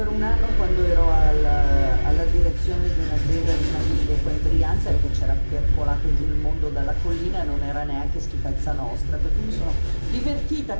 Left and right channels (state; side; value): inverted; both; correlation -1.00